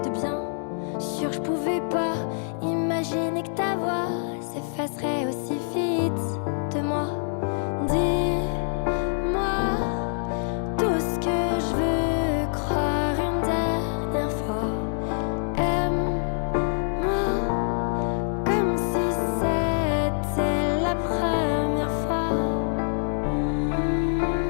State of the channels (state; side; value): silent; right; digital silence